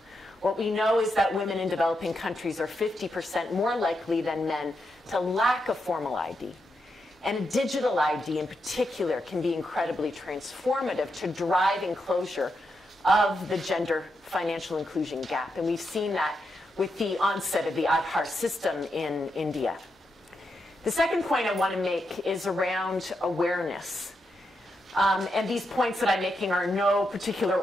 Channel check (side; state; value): both; normal; correlation 0.84